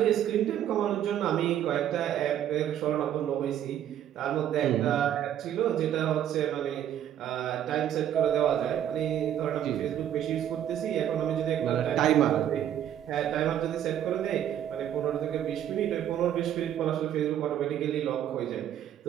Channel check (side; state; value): left; quieter; 10.6 dB